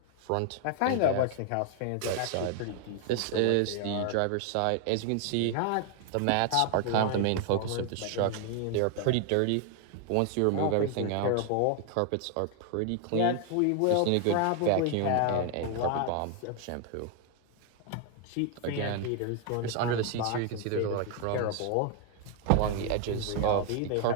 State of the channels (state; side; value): different; both; correlation 0.00